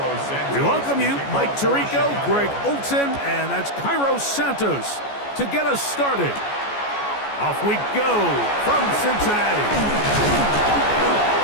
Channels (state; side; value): late; right; 14 ms